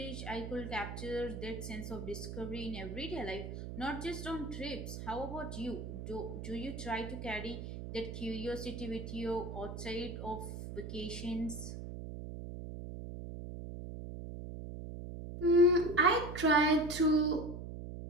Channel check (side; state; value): right; noise; hum, 8 dB below the sound